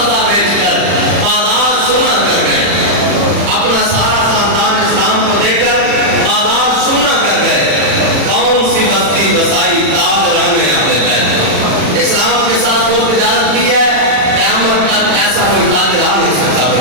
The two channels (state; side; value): late; left; 40 ms